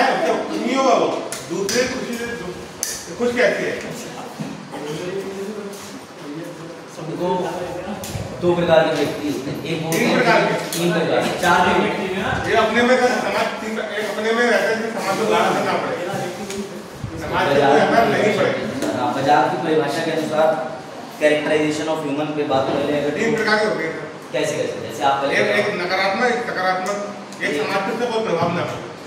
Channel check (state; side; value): identical; both; correlation 1.00